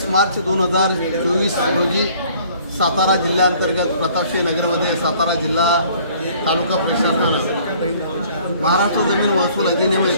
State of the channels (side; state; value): both; inverted; correlation -0.56